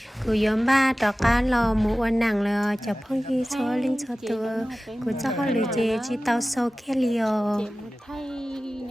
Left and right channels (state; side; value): normal; both; correlation 0.96